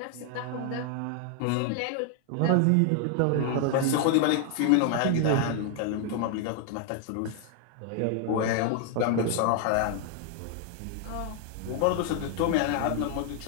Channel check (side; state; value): both; different; correlation 0.00